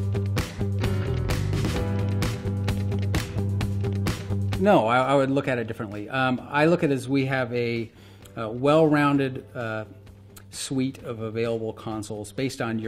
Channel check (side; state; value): both; identical; correlation 1.00